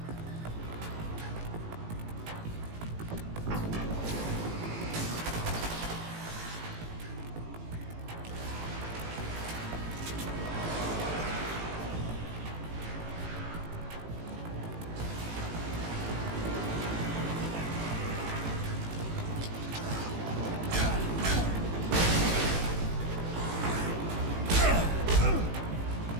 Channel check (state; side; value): late; left; 18 ms